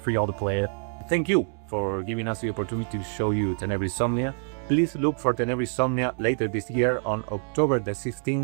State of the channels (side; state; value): left; silent; 61 dB below the other